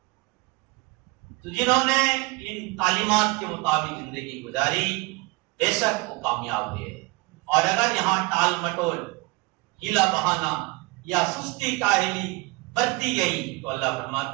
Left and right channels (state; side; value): quieter; left; 24.9 dB